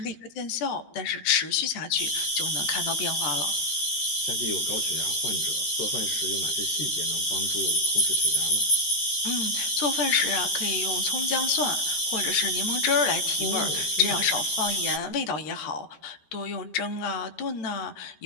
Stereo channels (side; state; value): right; late; 13 ms